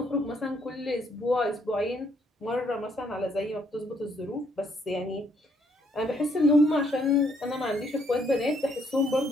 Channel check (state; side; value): normal; both; correlation 0.69